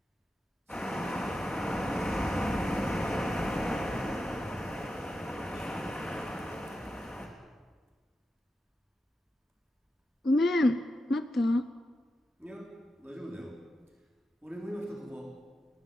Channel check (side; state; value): both; normal; correlation 0.89